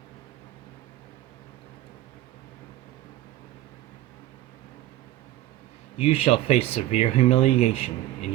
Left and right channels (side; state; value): left; quieter; 14.6 dB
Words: You shall face severe humiliation in